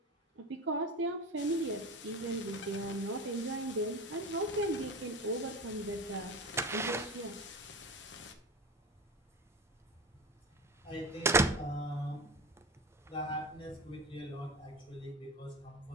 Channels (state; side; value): normal; both; correlation 0.28